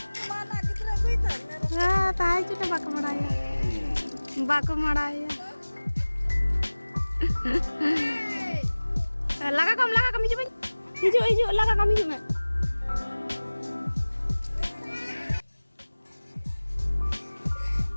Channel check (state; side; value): inverted; both; correlation -1.00